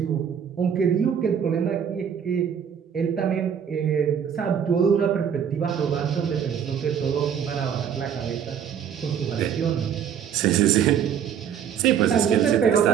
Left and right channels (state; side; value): quieter; left; 8.3 dB